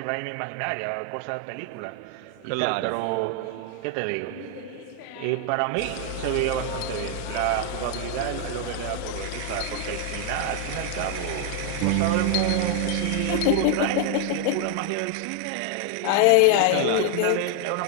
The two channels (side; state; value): both; different; correlation 0.00